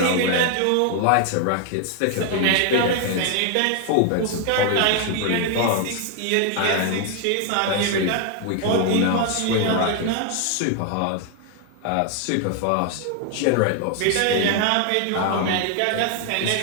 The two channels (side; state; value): both; different; correlation 0.00